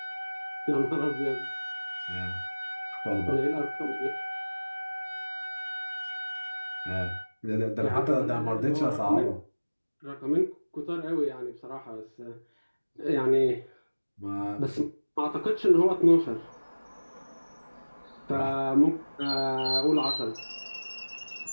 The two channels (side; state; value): both; inverted; correlation -1.00